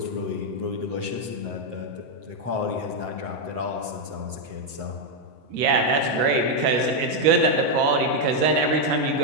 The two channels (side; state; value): left; late; 7.8 ms